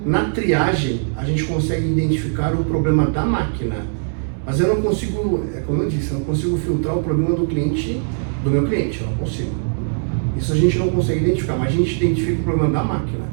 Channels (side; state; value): left; silent; digital silence